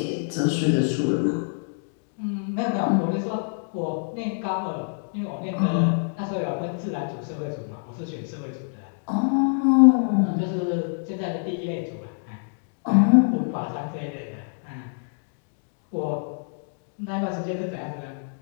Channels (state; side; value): silent; right; digital silence